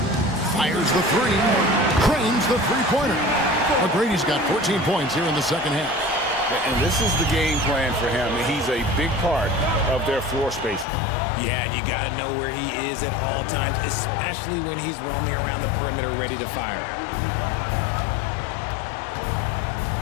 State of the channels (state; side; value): drops out; right; at 10.9 s